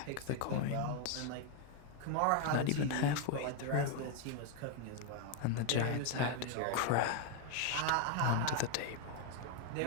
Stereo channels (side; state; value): both; different; correlation 0.01